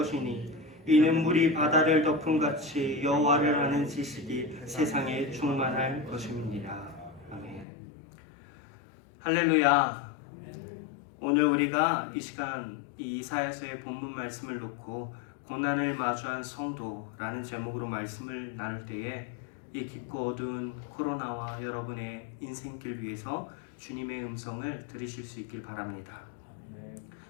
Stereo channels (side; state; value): right; drops out; at 7.7 s